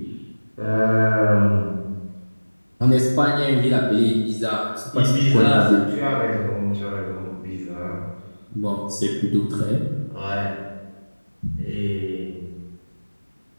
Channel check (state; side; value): inverted; both; correlation -1.00